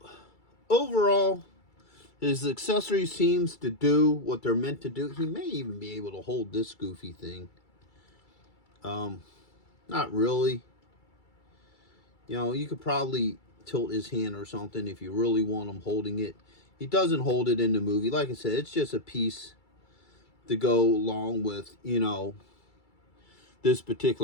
overall, his accessory seems to do what they're meant to do. He may even be able to hold this goofy thing. Not really. You know, you could probably tilt his hand or something if you really want him holding it. He doesn't hold it in the movie. Like I said, it's just a piece to go along with, you know, this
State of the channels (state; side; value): late; right; 2.3 ms